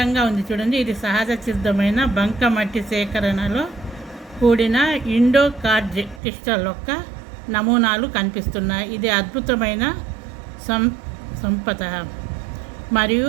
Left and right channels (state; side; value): drops out; left; at 6.2 s